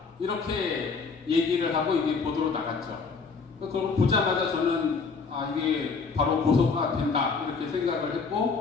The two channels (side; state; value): right; quieter; 4.9 dB